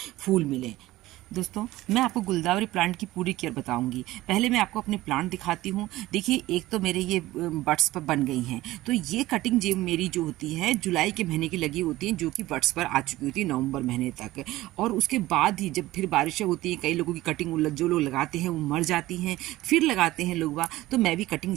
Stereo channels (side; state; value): left; quieter; 17.2 dB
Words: फूल मिलें। दोस्तों, मैं आपको गुलदावरी प्लांट की पूरी केयर बताऊंगी। पहले मैं आपको अपने प्लांट दिखाती हूँ। देखिए, एक तो मेरे ये बड्स पर बन गई हैं, तो ये कटिंग जो मेरी जो होती है जुलाई के महीने की लगी होती हैं, जो कि बड्स पर आ चुकी होती है नवंबर महीने तक। और उसके बाद ही जब फिर बारिशें होती हैं, कई लोगों की कटिंग जो लोग लगाते हैं वो मर जाती हैं, फिर लगाते हैं लोग, तो मैं भी कटिंग